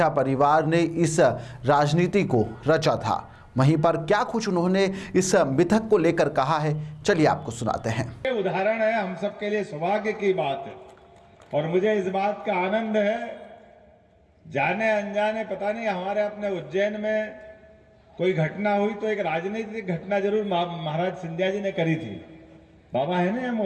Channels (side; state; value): both; identical; correlation 1.00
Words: परिवार ने इस राजनीति को रचा था। वहीं पर क्या कुछ उन्होंने इस मिथक को लेकर कहा है, चलिए आपको सुनाते हैं। उदाहरण है, हम सबके लिए सौभाग्य की बात है और मुझे इस बात का आनंद है, जाने अनजाने पता नहीं हमारे अपने उज्जैन में कोई घटना हुई तो एक राजनीतिक घटना जरूर महाराज सिंधिया जी ने करी थी। बाबा है ना